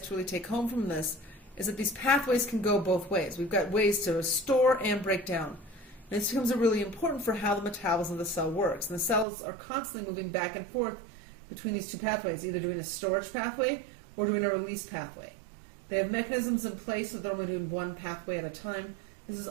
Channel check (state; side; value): drops out; left; at 9.2 s